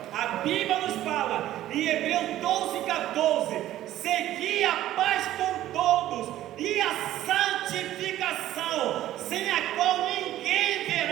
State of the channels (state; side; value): quieter; left; 13.5 dB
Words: A Bíblia nos fala em Hebreus 12:14: segui a paz com todos e a santificação, sem a qual ninguém